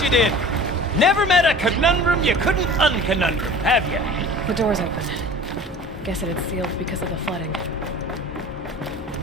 you did. Never met a conundrum you couldn't unconundrum, have you? The door's open. Guess it had sealed because of the flooding.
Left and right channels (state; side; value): normal; both; correlation 0.41